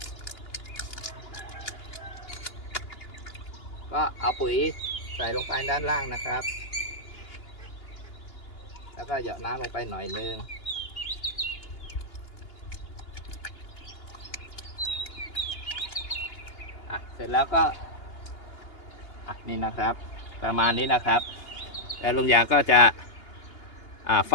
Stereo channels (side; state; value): right; late; 2.8 ms